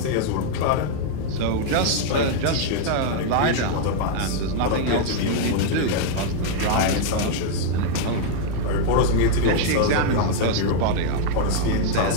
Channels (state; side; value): different; both; correlation 0.00